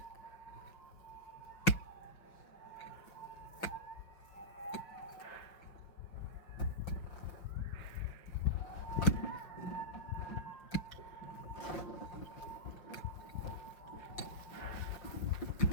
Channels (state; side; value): late; right; 5.6 ms